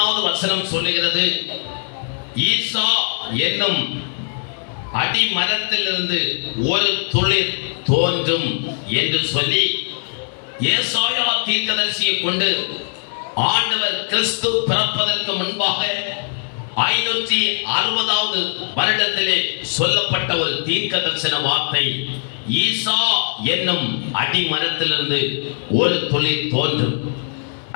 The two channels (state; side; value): silent; right; digital silence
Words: வசனம் சொல்லுகிறது, ஈசா என்னும் அடி மரத்திலிருந்து ஒரு துளிர் தோன்றும் என்று சொல்லி ஏசாயா தீர்க்கதரிசியை கொண்டு ஆண்டவர் கிறிஸ்து பிறப்பதற்கு முன்பாக 560வது வருடத்திலே சொல்லப்பட்ட ஒரு தீர்க்க தரிசன வார்த்தை, ஈசா என்னும் அடி மரத்திலிருந்து ஒரு துளிர் தோன்றும்.